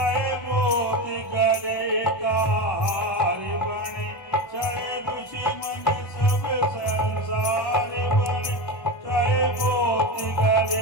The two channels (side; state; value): right; late; 1.5 ms